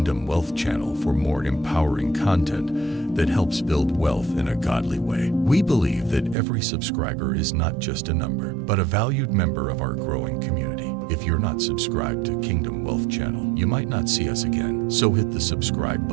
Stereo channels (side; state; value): left; drops out; at 6.4 s